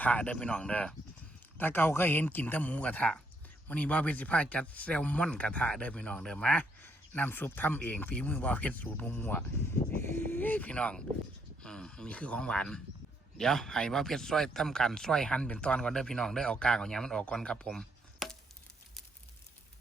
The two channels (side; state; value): both; normal; correlation 0.74